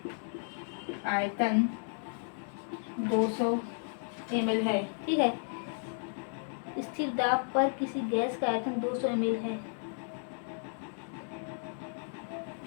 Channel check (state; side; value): silent; right; 55 dB below the other